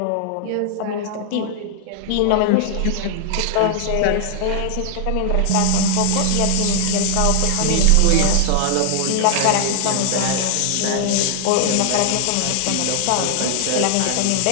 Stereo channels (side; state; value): both; different; correlation 0.00